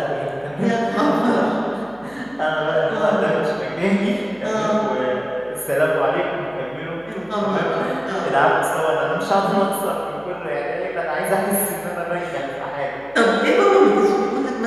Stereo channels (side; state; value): right; noise; hum, 27 dB below the sound